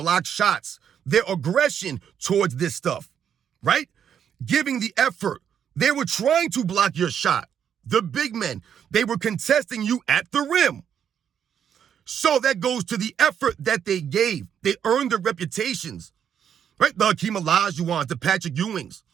shots, their aggression towards this stuff, right? Giving the effort. They were trying to block your shot. The big men, they were contesting you at the rim. So that goes to the effort that they gave. They earned their reputations, right? The Hakeem Olajuwons, the Patrick Ewings,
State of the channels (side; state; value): left; quieter; 8.5 dB